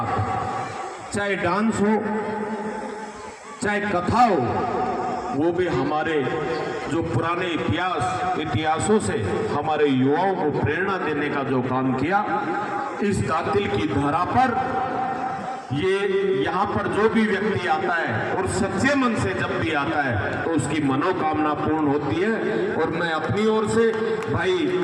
चाहे डांस हो चाहे कथा हो, वो भी हमारे जो पुराने इतिहासों से हमारे युवाओं को प्रेरणा देने का जो काम किया, इस दातिल की धरा पर ये यहाँ पर जो भी व्यक्ति आता है और सच्चे मन से जब भी आता है तो उसकी मनोकामना पूर्ण होती है। और मैं अपनी ओर से भाई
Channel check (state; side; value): identical; both; correlation 1.00